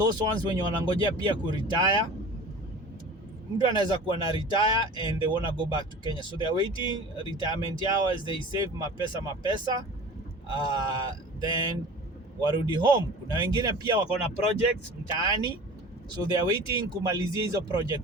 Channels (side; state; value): both; normal; correlation 0.39